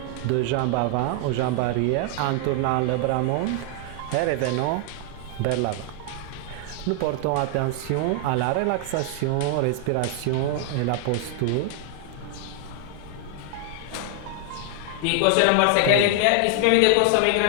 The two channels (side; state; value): both; different; correlation 0.00